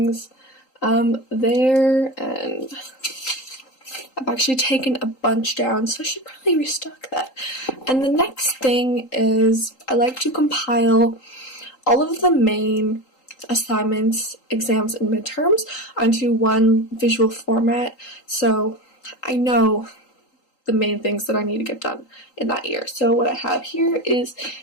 there, and I've actually taken a bunch down, so I should probably restock that. And the next thing is I like to compile all of the main assignments, exams, and midterms onto one visual format, so I know the main things that I need to get done in that year. So what I have here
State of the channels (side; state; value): right; late; 3.8 ms